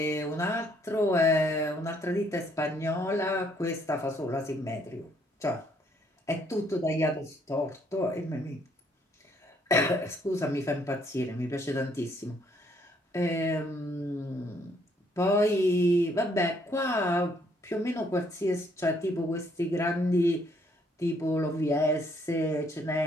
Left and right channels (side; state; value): both; normal; correlation 0.67